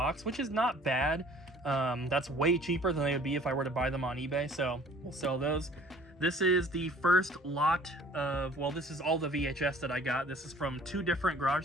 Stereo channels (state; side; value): normal; both; correlation 0.52